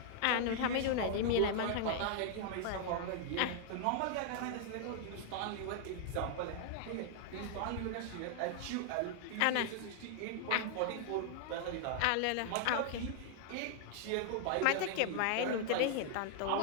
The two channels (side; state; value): both; different; correlation 0.00